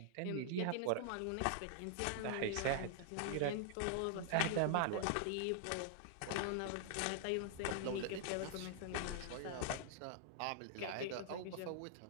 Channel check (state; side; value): different; both; correlation -0.01